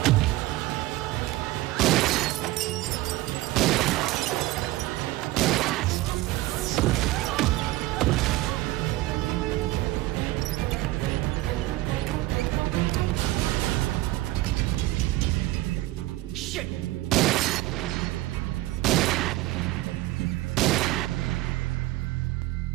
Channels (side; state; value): left; quieter; 17.7 dB